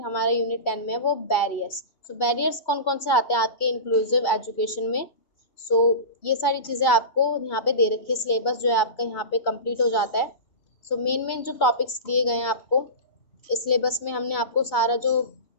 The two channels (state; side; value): late; right; 2.8 ms